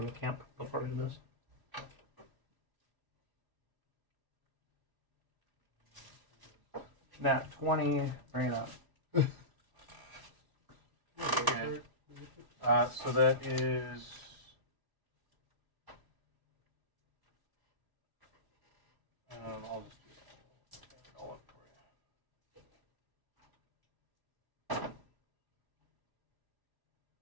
the camp before we did this? Nat 20, bring it up. Okay. So that is. I'll just do it all up for you.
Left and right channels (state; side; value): late; left; 1.0 ms